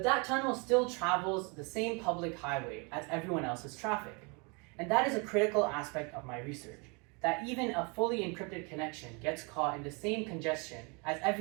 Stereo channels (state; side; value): quieter; left; 31.5 dB